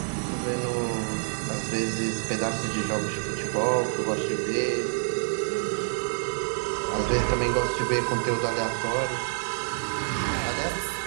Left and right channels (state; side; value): silent; left; digital silence